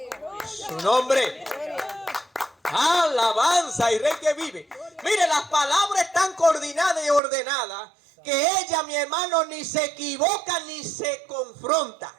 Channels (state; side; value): drops out; left; at 7.2 s